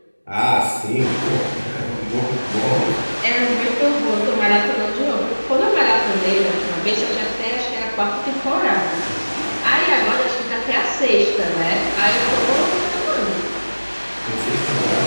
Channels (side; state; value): both; inverted; correlation -1.00